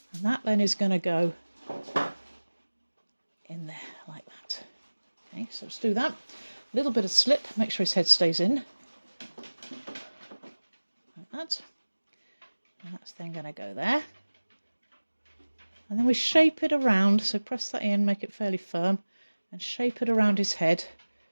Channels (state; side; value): inverted; both; correlation -1.00